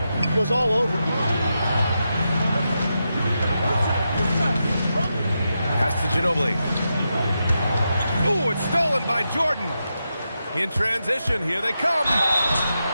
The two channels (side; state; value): both; inverted; correlation -0.87